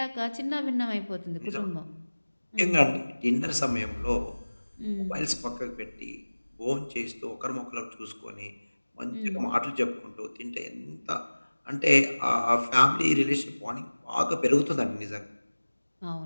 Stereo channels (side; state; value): both; inverted; correlation -1.00